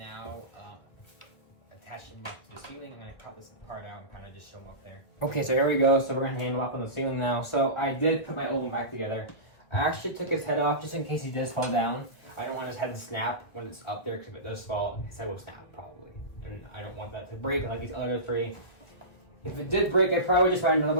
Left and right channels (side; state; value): right; late; 1.8 ms